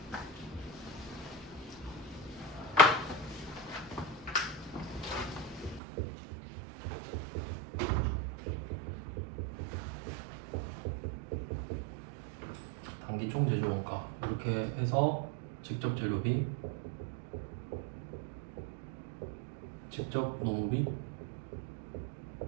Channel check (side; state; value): left; drops out; at 5.8 s